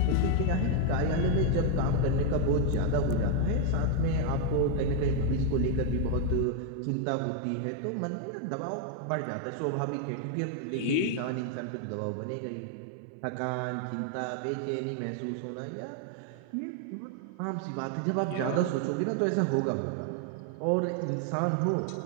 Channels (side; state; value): both; different; correlation 0.01